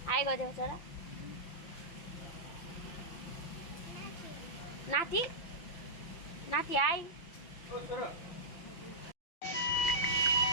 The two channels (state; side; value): late; right; 5.9 ms